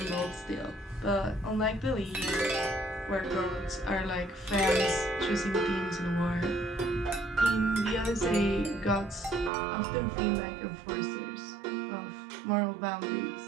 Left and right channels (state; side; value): drops out; left; at 9.5 s